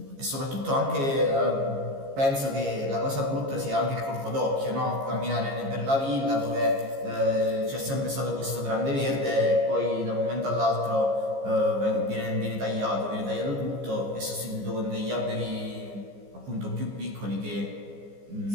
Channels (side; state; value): left; late; 15 ms